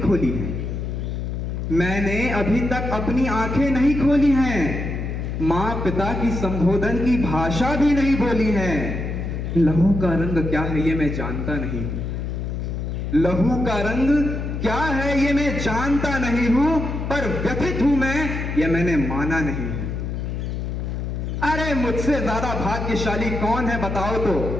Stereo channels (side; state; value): left; noise; hum, 4 dB below the sound